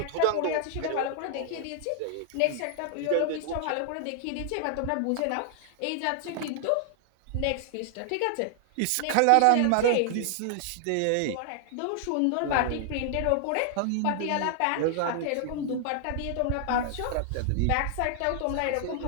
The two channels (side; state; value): both; different; correlation 0.00